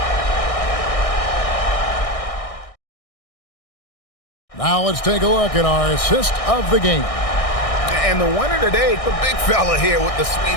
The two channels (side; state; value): right; late; 1.6 ms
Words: Now let's take a look at our assist of the game. And the winner today, the big fella here with the